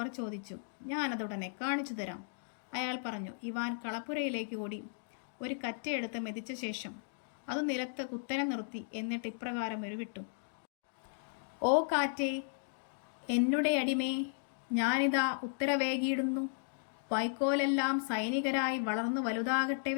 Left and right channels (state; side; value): silent; right; digital silence